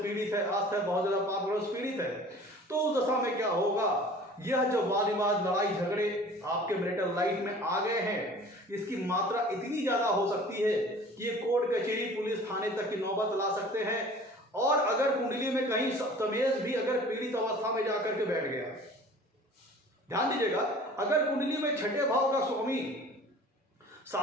है, अस्त है, बहुत ज्यादा पाप ग्रहों से पीड़ित है, तो उस दशा में क्या होगा, यह जो वाद विवाद, लड़ाई झगड़े आपके मैरिटल लाइफ में आ गए हैं, इसकी मात्रा इतनी ज्यादा हो सकती है कि ये कोर्ट कचहरी, पुलिस थाने तक की नौबत ला सकते हैं। और अगर कुंडली में कहीं सप्तमेश भी अगर पीड़ित अवस्था में जाकर के बैठ गया, ध्यान दीजिएगा, अगर कुंडली में छठे भाव का स्वामी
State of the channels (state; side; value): normal; both; correlation 0.45